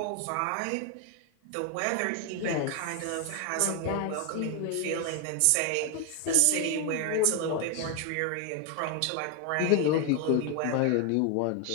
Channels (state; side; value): different; both; correlation 0.00